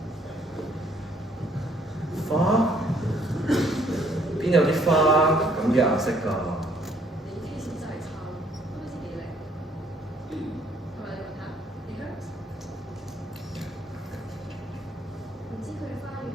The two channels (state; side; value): normal; both; correlation 0.64